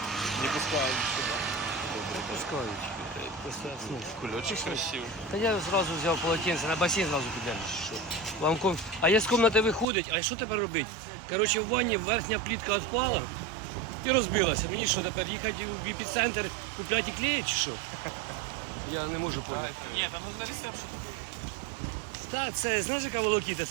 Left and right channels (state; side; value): drops out; left; at 9.9 s